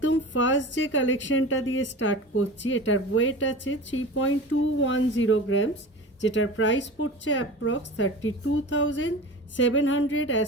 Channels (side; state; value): both; normal; correlation 0.34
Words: फार्स्ट जे कालेक्शनटा दिए स्टार्ट करছি এটার ওয়েট আছে 3.210 গ্রামস, যেটার প্রাইস পড়ছে approx 32,700 as